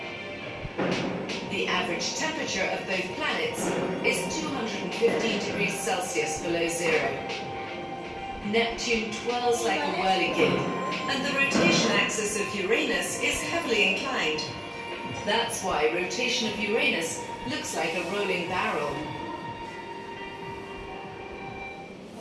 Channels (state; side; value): identical; both; correlation 1.00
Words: The average temperature of both planets is 215 degrees Celsius below zero. Neptune twirls like a whirligig, and the rotation axis of Uranus is heavily inclined. That's why rotation of Uranus looks like a rolling barrel.